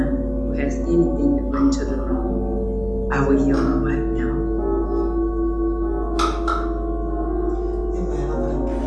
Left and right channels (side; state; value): both; identical; correlation 1.00